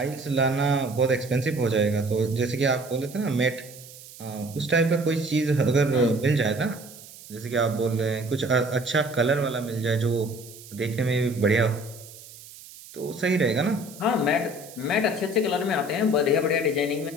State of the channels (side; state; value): right; noise; hiss, 18 dB below the sound